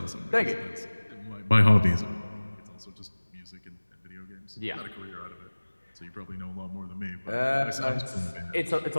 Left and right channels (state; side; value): inverted; both; correlation -1.00